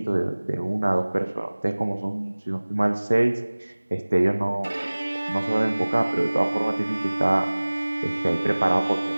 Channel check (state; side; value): inverted; both; correlation -1.00